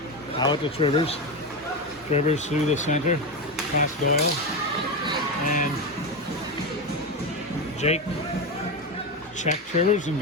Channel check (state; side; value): normal; both; correlation 0.15